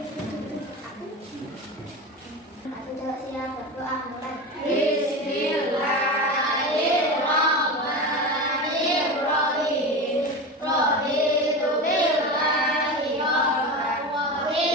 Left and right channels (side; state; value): both; normal; correlation 0.25